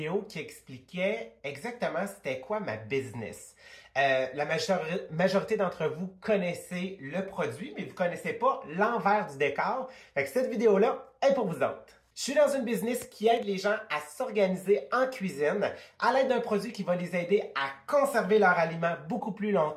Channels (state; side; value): identical; both; correlation 1.00